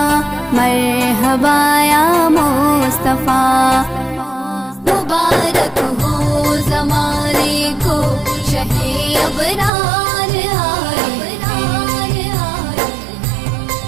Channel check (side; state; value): left; drops out; at 9.7 s